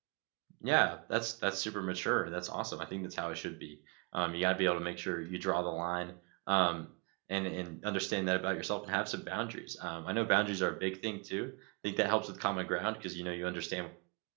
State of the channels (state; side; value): quieter; left; 33.2 dB